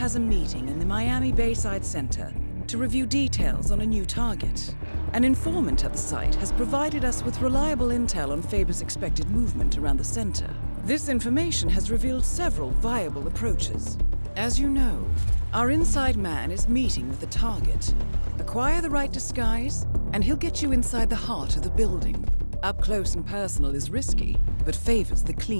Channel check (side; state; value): both; inverted; correlation -1.00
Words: a meeting in the Miami Bayside Center to review details on a new target. An informant at the site has provided us with reliable intel on Faber's expected movement around the center. This information has revealed several viable approaches. As you know, our inside man is meeting with the target. Acquire the right disguise, and he'll get you inside the heart of the building. Up close and personal is risky, but favors the